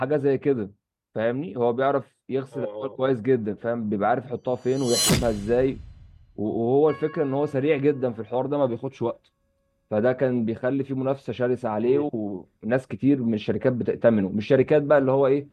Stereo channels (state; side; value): identical; both; correlation 1.00